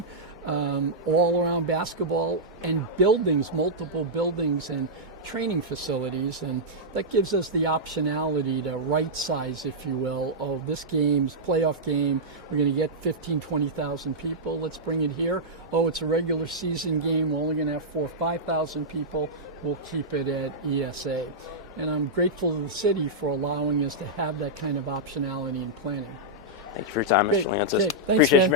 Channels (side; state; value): both; normal; correlation -0.10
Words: all around basketball, and buildings, multiple buildings and training facilities. And that gives us the optionality to right size, if you will, oh, this game's playoff game, we're going to get 15, 20,000 people. Let's bring it here. Oh, it's a regular season game. We're only going to have 4,000 or 5,000 people. We'll keep it at ESA. And I'm grateful to the city for allowing us to have that kind of optionality in planning. Thank you for your time, Great. Mr. Leonsis. Okay. Thanks, Appreciate man. you